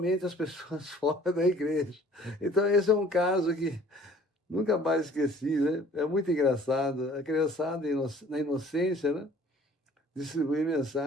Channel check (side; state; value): both; normal; correlation 0.53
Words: as pessoas fora da igreja. Então, esse é um caso que nunca mais esqueci, né? É muito engraçado. A criançada, na inocência, né? Distribuir